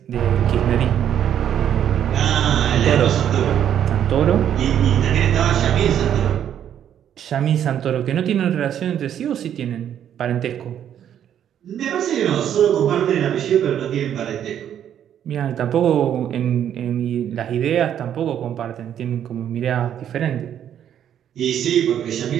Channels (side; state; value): left; quieter; 9.8 dB